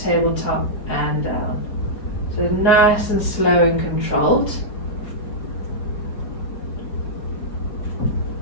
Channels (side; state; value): right; late; 4.9 ms